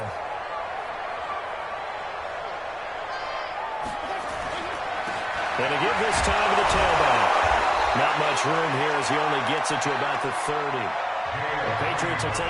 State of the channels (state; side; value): identical; both; correlation 1.00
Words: And to give this time to the tailback. Not much room here as he only gets it to about the 30. The Patriots will